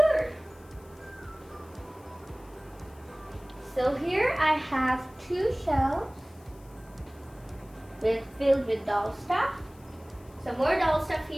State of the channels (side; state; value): left; noise; hiss, 28 dB below the sound